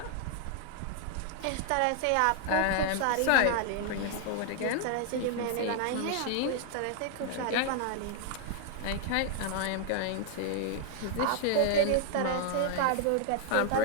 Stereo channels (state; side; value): different; both; correlation 0.00